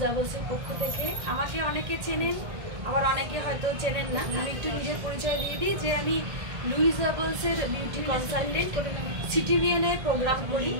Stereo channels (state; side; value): late; left; 1.8 ms